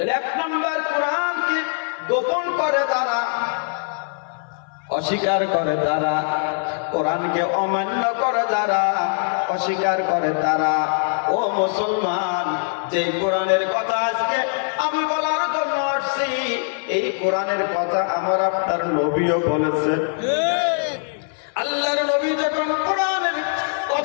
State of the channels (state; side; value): silent; right; 58 dB below the other